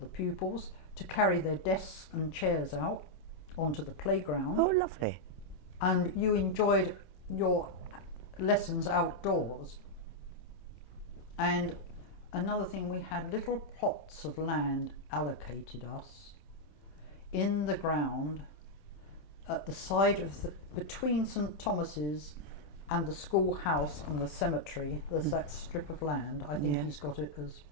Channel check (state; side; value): late; right; 27 ms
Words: pupils to carry their desks and chairs out onto the playground. Oh, lovely. And you enjoyed your lessons outdoors. And another thing, we had little plots of land allocated us in the ground at the side of between St Thomas's and the schoolhouse and the cemetery. There's that strip of land. I think he's got it as